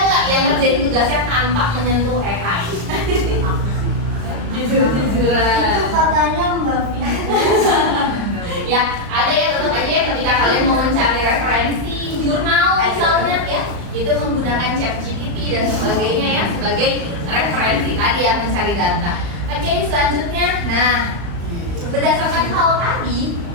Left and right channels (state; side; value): late; left; 35 ms